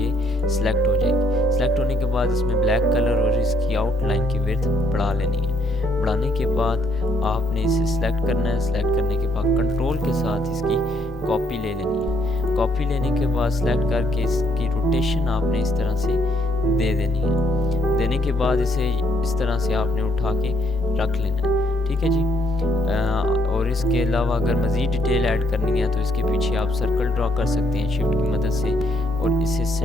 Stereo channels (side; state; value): both; normal; correlation 0.70